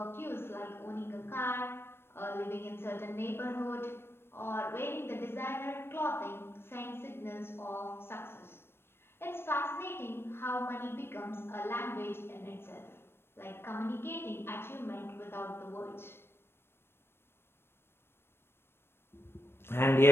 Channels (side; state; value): right; late; 0.12 ms